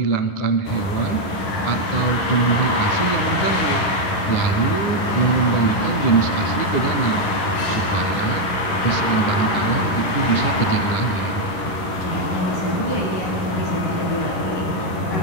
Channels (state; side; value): late; right; 11 ms